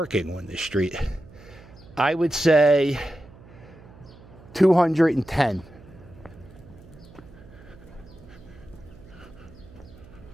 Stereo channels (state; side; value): noise; right; hum, 21 dB below the sound